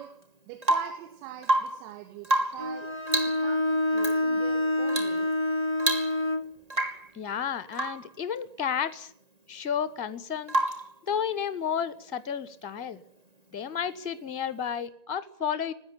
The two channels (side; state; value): left; late; 1.9 ms